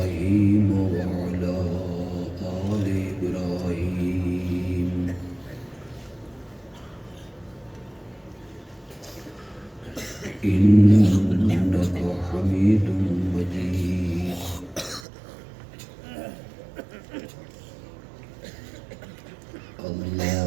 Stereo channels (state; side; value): drops out; left; at 15.1 s